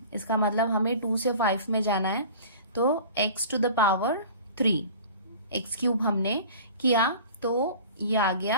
इसका मतलब हमें 2 से 5 में जाना है, तो x⁵, x³ हमने किया तो ये आ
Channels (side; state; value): both; inverted; correlation -0.41